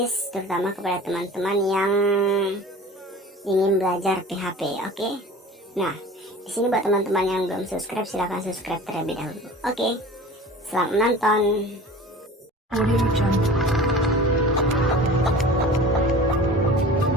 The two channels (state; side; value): normal; both; correlation 0.40